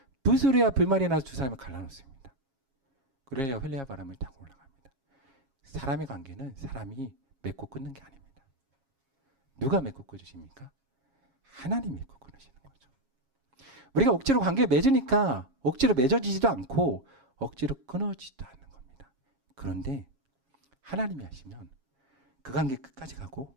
불소리와 불말이 나서 두 사람을 갈라놓습니다. 그래야 헬레아 바람을 타고 올라갑니다. 사람의 관계는 사람이 맺고 끊는 게 아닙니다. 누가 맺고 끊으십니까? 하나님이 맺고 끊으시는 거죠. 우리가 억지로 관계를 맺으니까 억지로 맺어지지도 않고 억지로 끊어지지도 않는 겁니다. 그런데 하나님이 하시면 그 관계 끝까지 가고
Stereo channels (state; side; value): late; left; 7.3 ms